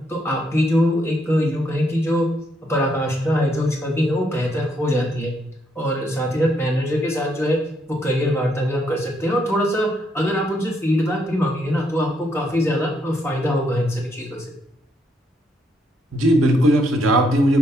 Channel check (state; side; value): normal; both; correlation 0.74